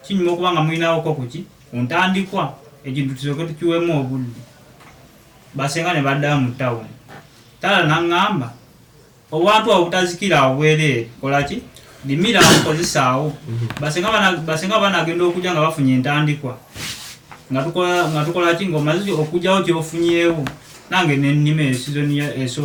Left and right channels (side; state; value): both; identical; correlation 1.00